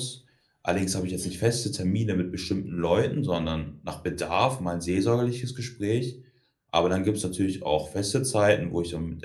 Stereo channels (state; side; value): identical; both; correlation 1.00